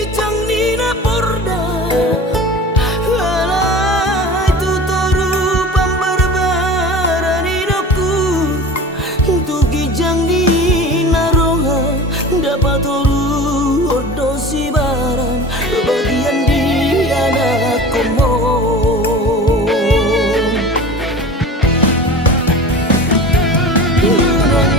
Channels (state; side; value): normal; both; correlation 0.36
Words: canglina porda alai tutoru pambarbaraninoku tugi canglina roha dapat toru odosi baran bagian di anak komon unang